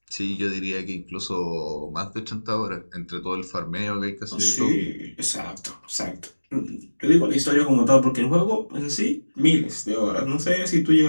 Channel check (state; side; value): inverted; both; correlation -1.00